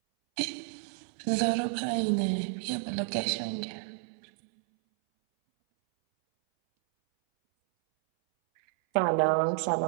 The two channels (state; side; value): silent; left; 58 dB below the other